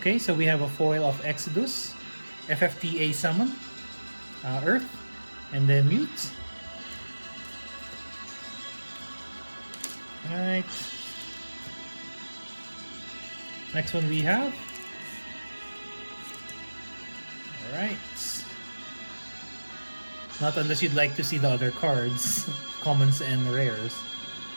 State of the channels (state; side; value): inverted; both; correlation -1.00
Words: so we have a foil of Exodus, FFTA Summon, Earth, and then Mute. Alright. Next one we have. Alright. Not unless you'd like to see the other cards, commons and rares.